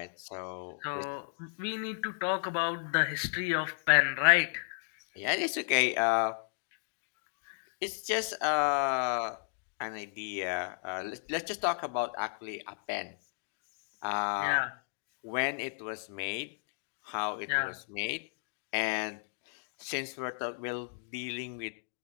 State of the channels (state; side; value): silent; right; digital silence